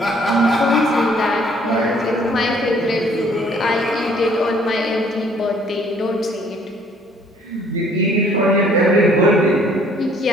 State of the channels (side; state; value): both; normal; correlation 0.60